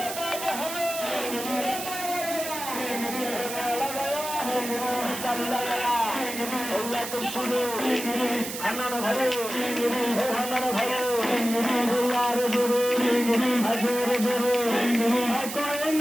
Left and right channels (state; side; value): noise; right; hiss, 7 dB below the sound